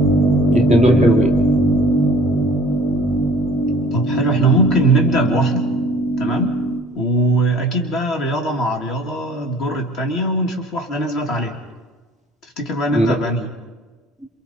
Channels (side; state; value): both; normal; correlation 0.50